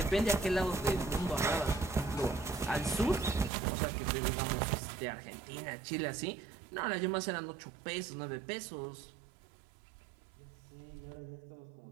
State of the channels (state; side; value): drops out; left; at 3.5 s